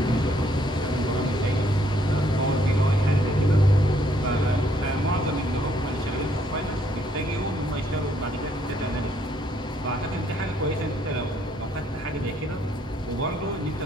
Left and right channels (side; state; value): both; normal; correlation 0.68